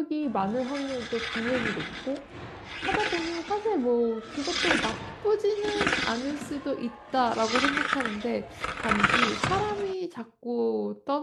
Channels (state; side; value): identical; both; correlation 1.00